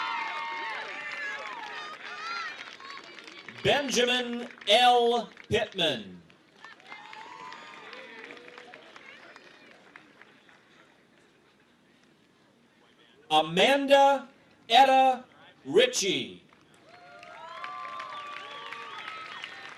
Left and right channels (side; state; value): both; identical; correlation 1.00